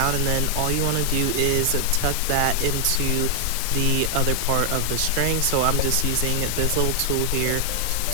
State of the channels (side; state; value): both; different; correlation 0.00